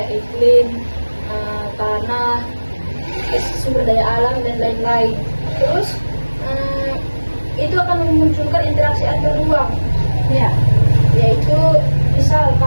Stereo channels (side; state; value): both; inverted; correlation -1.00